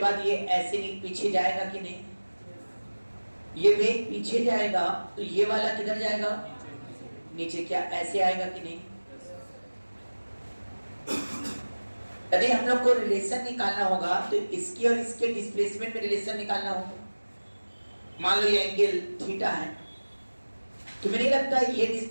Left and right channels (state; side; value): inverted; both; correlation -1.00